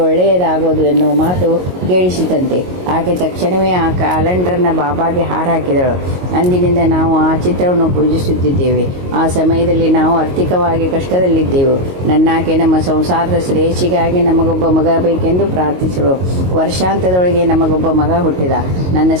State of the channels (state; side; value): late; left; 22 ms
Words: ಒಳ್ಳೆಯದಾಗುವುದು ಎನ್ನುವ ಮಾತು ಕೇಳಿಸಿತಂತೆ. ಆಕೆ ತಕ್ಷಣವೇ ಆ ಕ್ಯಾಲೆಂಡರ್ನ ಬಾಬಾಗೆ ಹಾರ ಹಾಕಿದಳು. ಅಂದಿನಿಂದ ನಾವು ಆ ಚಿತ್ರವನ್ನು ಪೂಜಿಸುತ್ತಿದ್ದೇವೆ. ಆ ಸಮಯದಲ್ಲಿ ನಾವು ಆರ್ಥಿಕವಾಗಿ ಕಷ್ಟದಲ್ಲಿದ್ದೆವು. ನನ್ನಾಕೆ ನಮ್ಮ ಸಂಸಾರದ ಶ್ರೇಯಸ್ಸಿಗಾಗಿ ನಮಗೊಬ್ಬ ಮಗ ಬೇಕೆಂದು ಪ್ರಾರ್ಥಿಸಲು ವರ್ಷಾಂತದೊಳಗೆ ನಮಗೊಬ್ಬ ಮಗ ಹುಟ್ಟಿದ. ನನ್ನ